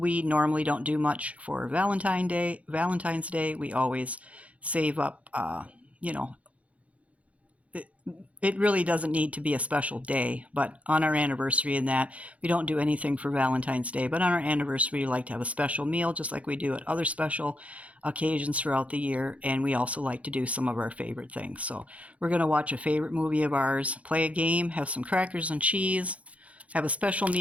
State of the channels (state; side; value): late; left; 0.066 ms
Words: normally don't do much for Valentine's Day. We always save up, it really doesn't need to be a special day, but on our anniversary and that, we don't do anything for Valentine's Day. But on our anniversary, we like to have a special meal, just like we do at other special occasions throughout the year. And we also like to do some of our favorite things. So we're going to watch a favorite movie of ours, play a game, have some crackers and cheese, have a special